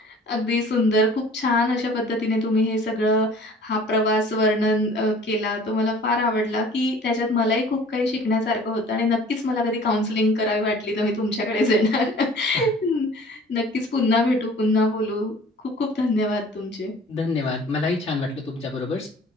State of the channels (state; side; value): normal; both; correlation 0.48